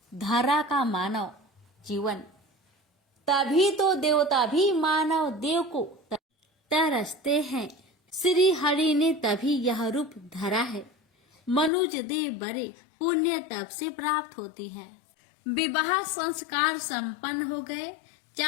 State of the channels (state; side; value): drops out; right; at 11.7 s